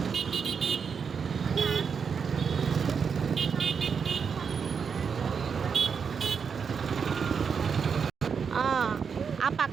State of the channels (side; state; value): left; quieter; 6.3 dB